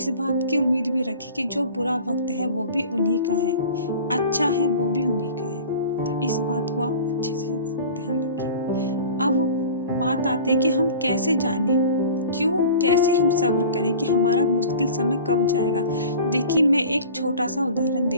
बात की उम्मीद भी रखिए कि जो बुरा वक्त है वो भी उन्हीं का है, अच्छा है वो भी उन्हीं का है। तो इस बात को आप अच्छे से ध्यान रखिए। अब बात आती है कि हम कैसे जाने, कैसे हम सब्र करें कि हमारा मुश्किल समय कब जाएगा। देखिए मैं एक छोटा सा उदाहरण दे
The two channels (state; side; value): inverted; both; correlation -0.40